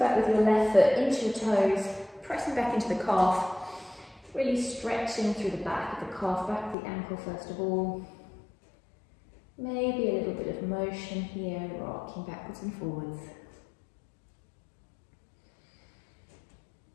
with your left foot into your toes. Pressing back into the calf. Really stretching through the back of the calf, back of the ankle first of all. Maybe a little bit of motion here, rocking backwards and forwards.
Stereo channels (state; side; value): drops out; right; at 6.8 s